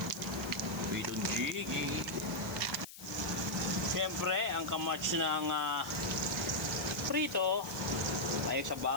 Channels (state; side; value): noise; left; hiss, 15 dB below the sound